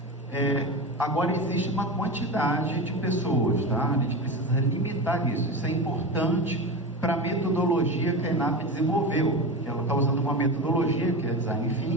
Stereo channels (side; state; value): both; normal; correlation 0.24